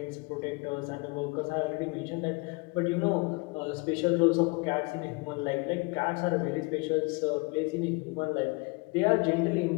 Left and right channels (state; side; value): quieter; right; 28.2 dB